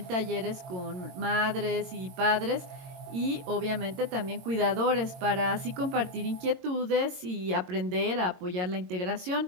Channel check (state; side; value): late; left; 22 ms